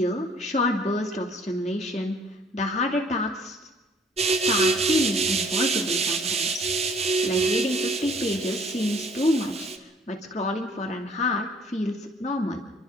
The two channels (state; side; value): normal; both; correlation 0.57